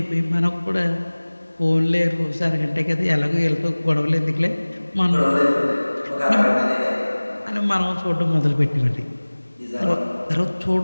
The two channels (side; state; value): both; inverted; correlation -1.00